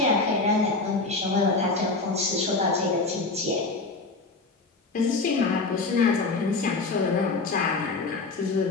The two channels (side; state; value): right; quieter; 3.7 dB